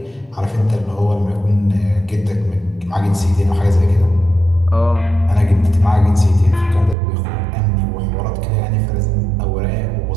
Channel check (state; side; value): drops out; left; at 7.0 s